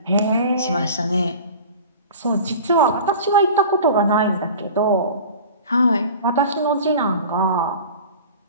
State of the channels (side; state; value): both; inverted; correlation -0.39